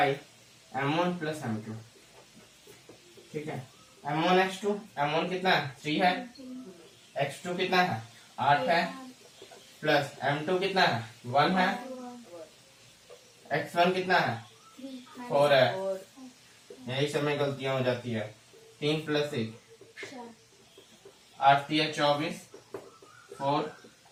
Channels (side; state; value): both; identical; correlation 1.00